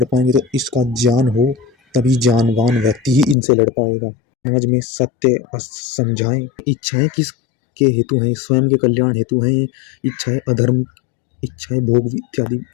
पाएंगे। तो इसका ज्ञान हो तभी जानवान व्यक्ति ही इनसे लड़ पाएगा। समाज में सत्य समझाएं। इच्छाएं किस के हेतु हैं, स्वयं के कल्याण हेतु हैं। इच्छाएं अधर्म, इच्छाएं भोग इत्यादि।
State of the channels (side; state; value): right; drops out; at 3.4 s